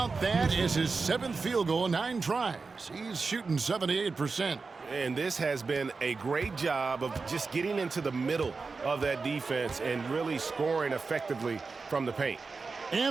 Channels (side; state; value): left; quieter; 4.4 dB